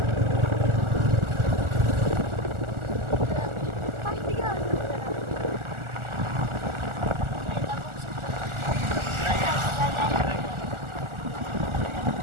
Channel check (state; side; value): late; left; 1.4 ms